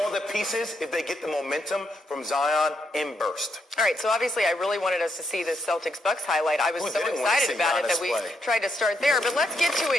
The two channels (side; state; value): both; normal; correlation 0.78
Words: the pieces if they get the momentum from Zion in burst. All right, so obviously I really wanted us to see this Celtics-Bucks highlight. I was so excited about it that we tried to start there. But let's get to